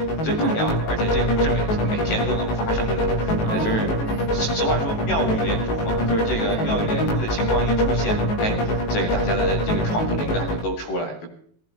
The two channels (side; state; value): right; late; 19 ms